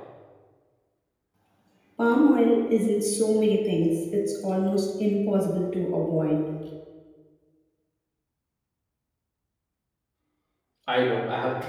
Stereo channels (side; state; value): both; identical; correlation 1.00